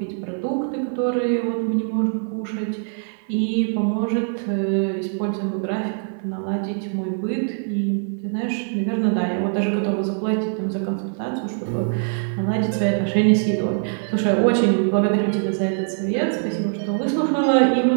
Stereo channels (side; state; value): left; silent; 64 dB below the other